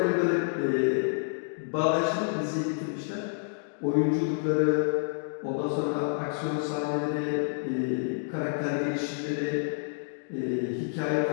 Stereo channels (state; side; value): silent; right; digital silence